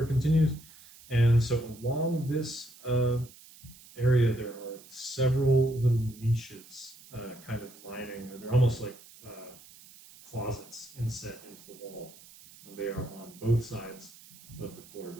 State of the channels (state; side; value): noise; right; hiss, 21 dB below the sound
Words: continues. And so along this area, there are several little niches kind of lining, or they're almost like closets inset into the wall. And they are on both sides of the